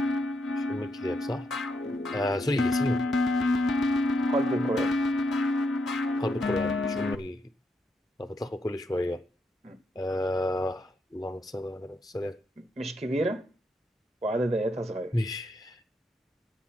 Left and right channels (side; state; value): both; normal; correlation 0.79